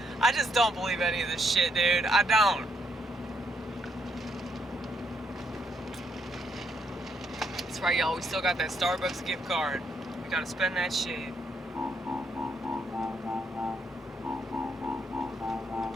I just don't believe any of this shit, dude. I don't. That's right, y'all. We still got that Starbucks gift card. We gotta spend that shit.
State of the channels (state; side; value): normal; both; correlation 0.75